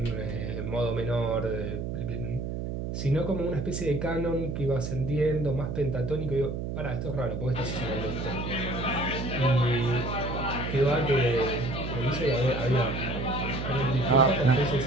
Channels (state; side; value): noise; right; hum, 4 dB below the sound